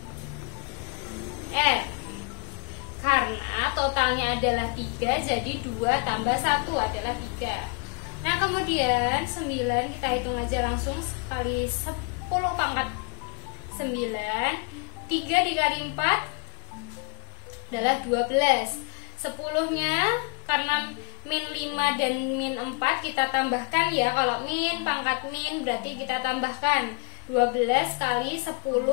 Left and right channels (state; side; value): quieter; right; 33.9 dB